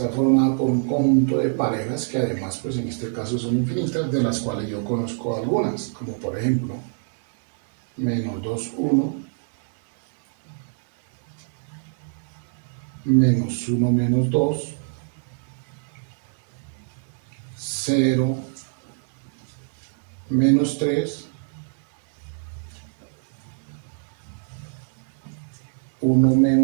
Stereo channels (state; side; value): silent; left; digital silence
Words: formada por un conjunto de parejas que además, pues en este caso son infinitas, de las cuales yo conozco algunas, como por ejemplo menos 2, 1, menos 1, menos 2, 0, menos 3, 1